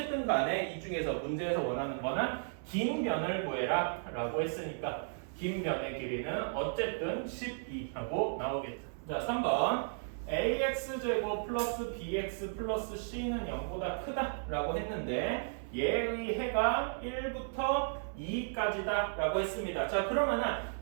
간에 이 중에서 문제에서 원하는 거는 긴 변을 구해라 라고 했으니까 긴 변의 길이는 어쨌든 12하고 나오겠죠. 자, 3번 ax제곱 플러스 bx 플러스 c는 0보다 크다 라고 했는데 얘의 해가 1부터 2까지다 라고 했습니다. 자, 그러면은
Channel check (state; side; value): silent; left; 55 dB below the other